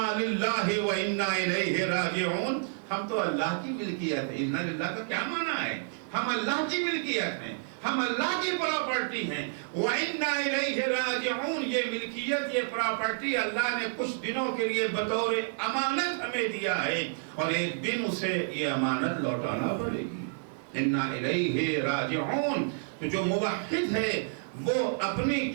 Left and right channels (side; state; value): left; silent; 58 dB below the other